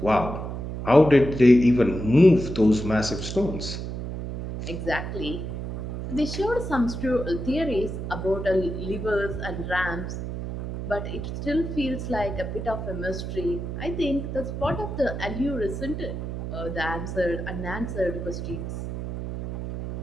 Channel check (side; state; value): right; noise; hum, 6 dB below the sound